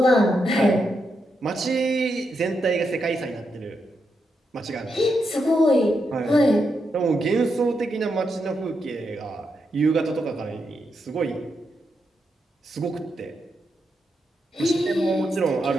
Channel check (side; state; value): both; normal; correlation 0.83